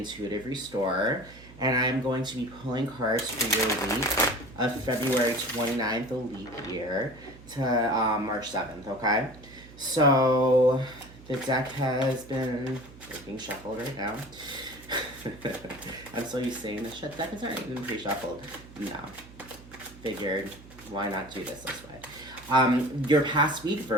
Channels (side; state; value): right; noise; hum, 20 dB below the sound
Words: Restorer, and I am going to be pulling cards for your week of February 29th, the leap year, to March 7th, okay? So, the deck has been being shuffled right now. I'm so used to saying this deck is already been pre-shuffled. No. Figured, why not do this way? Your past week,